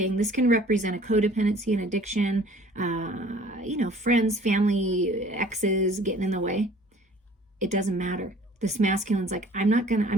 this can represent a codependency, an addiction, friends, family, exes getting in the way. It doesn't matter. This masculine's like, I'm going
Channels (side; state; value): both; normal; correlation 0.52